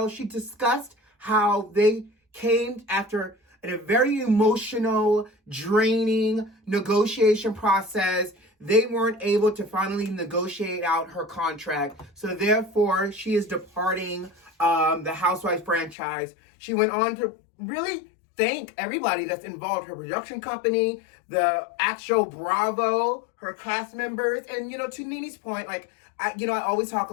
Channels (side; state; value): right; drops out; at 16.0 s